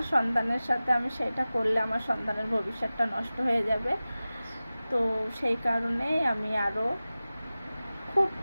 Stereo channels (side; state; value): both; inverted; correlation -0.96